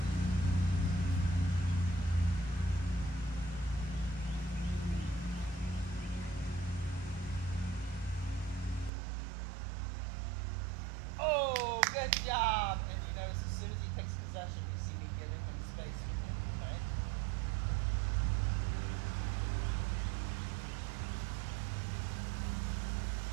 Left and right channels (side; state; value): left; drops out; at 8.9 s